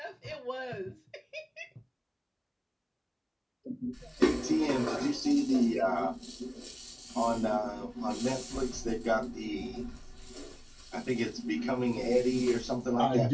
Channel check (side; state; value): both; identical; correlation 1.00